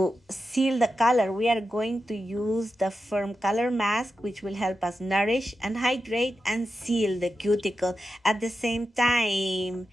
seal the color, we are going to use the firm color mask, which will help us nourish and hydrate and seal the cuticle at the same time.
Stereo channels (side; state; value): both; normal; correlation 0.90